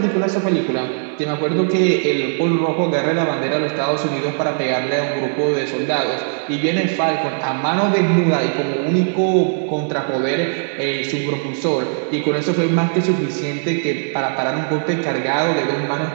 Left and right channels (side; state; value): left; silent; digital silence